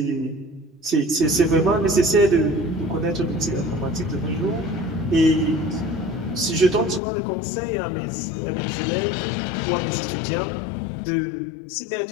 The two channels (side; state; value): right; drops out; at 7.0 s